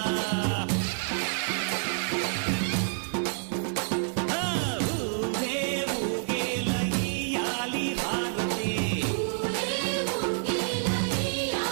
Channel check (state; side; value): silent; left; 57 dB below the other